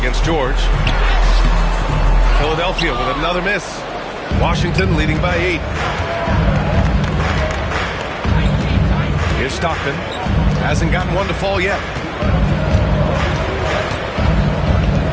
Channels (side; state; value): both; identical; correlation 1.00